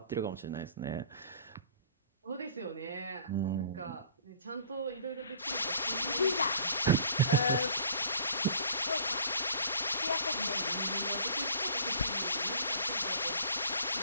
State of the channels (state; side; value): inverted; both; correlation -0.50